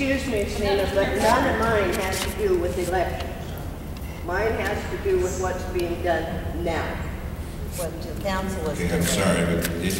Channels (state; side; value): identical; both; correlation 1.00